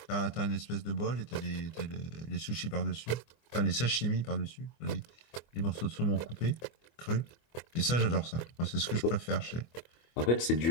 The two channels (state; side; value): late; right; 24 ms